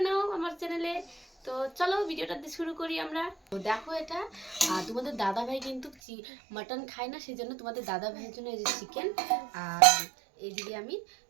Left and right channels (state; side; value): drops out; left; at 6.0 s